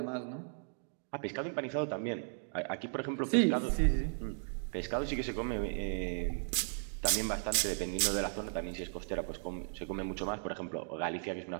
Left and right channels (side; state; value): left; silent; digital silence